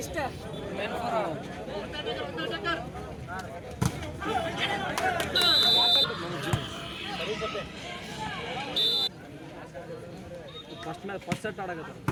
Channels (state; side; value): identical; both; correlation 1.00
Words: first set ಆಡಕತ್ತ